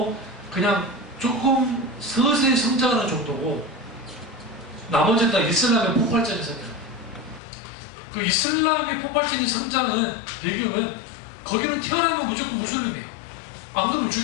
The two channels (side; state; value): right; drops out; at 7.4 s